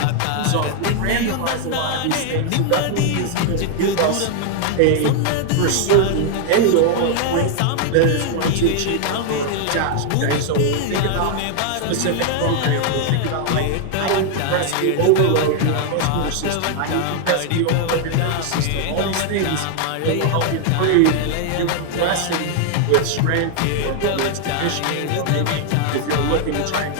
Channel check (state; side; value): different; both; correlation 0.00